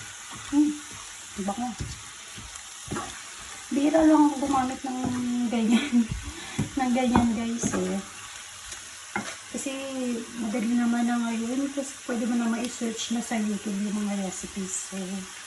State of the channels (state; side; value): identical; both; correlation 1.00